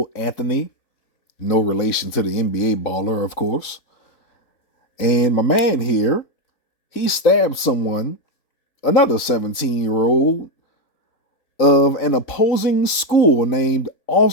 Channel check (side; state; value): right; late; 3.9 ms